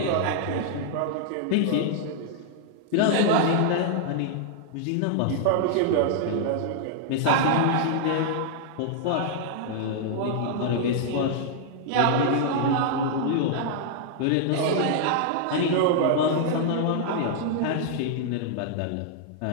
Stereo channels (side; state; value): both; different; correlation -0.01